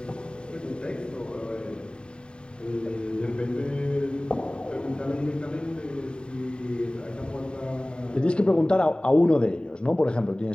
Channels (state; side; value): late; right; 0.051 ms